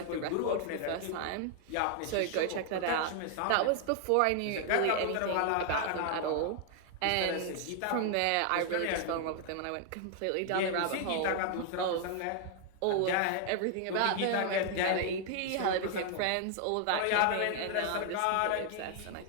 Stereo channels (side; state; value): both; different; correlation 0.00